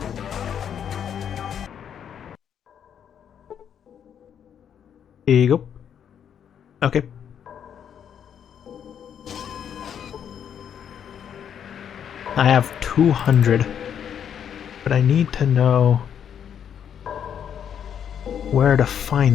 Here you go. Okay. I have 200. But I need to know where to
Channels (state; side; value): quieter; right; 8.6 dB